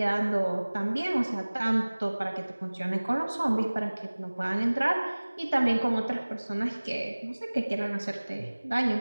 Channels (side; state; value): both; inverted; correlation -1.00